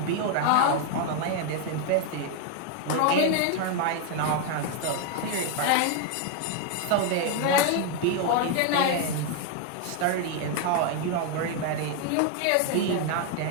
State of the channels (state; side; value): different; both; correlation 0.00